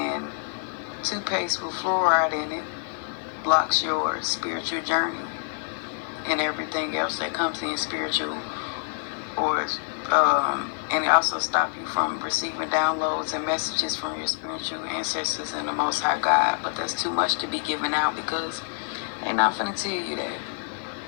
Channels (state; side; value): silent; right; digital silence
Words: toothpaste with fluoride in it blocks your spiritual journey and everything else that comes in spiritual, or and it also stop you from receiving downloads and messages from your spiritual ancestors and the Most High God. But that's too much to be given out because they're not finna tell you that.